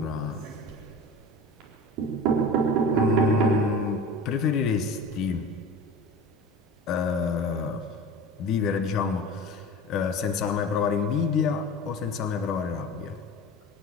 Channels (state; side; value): normal; both; correlation 0.35